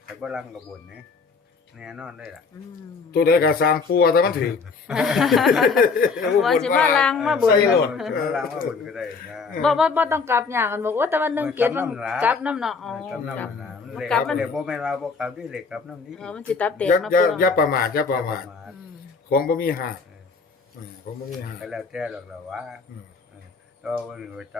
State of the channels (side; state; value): right; quieter; 4.8 dB